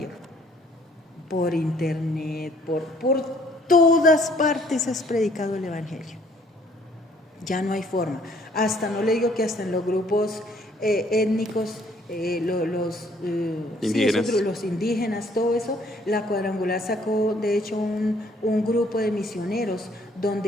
Por internet, por todas partes es predicado el evangelio. Ya no hay forma. Hasta, no le digo que hasta en los grupos étnicos, los indígenas, todo eso, la Cuadrangular sacó de hecho un grupo de misioneros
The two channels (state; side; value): normal; both; correlation 0.62